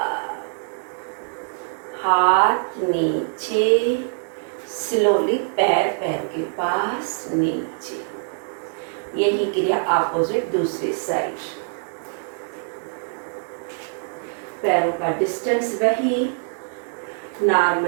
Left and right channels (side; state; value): left; silent; digital silence